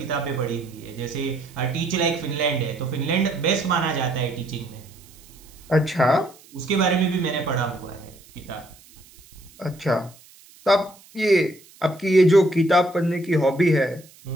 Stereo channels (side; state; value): right; noise; hiss, 25 dB below the sound